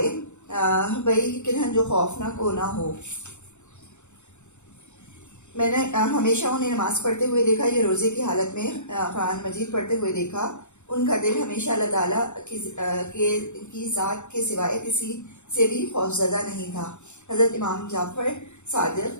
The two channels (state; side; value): late; right; 0.83 ms